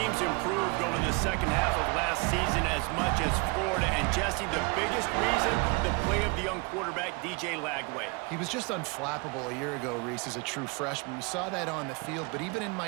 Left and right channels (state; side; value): quieter; left; 29.1 dB